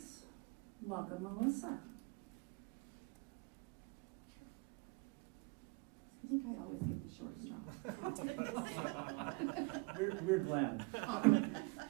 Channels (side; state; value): left; quieter; 29.2 dB